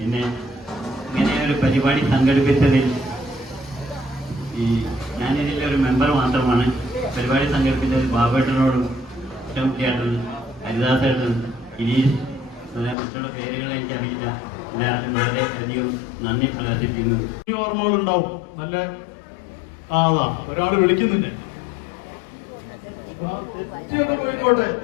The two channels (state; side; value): drops out; right; at 13.0 s